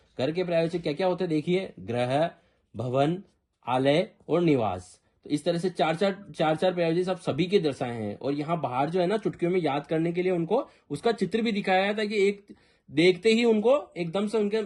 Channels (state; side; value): identical; both; correlation 1.00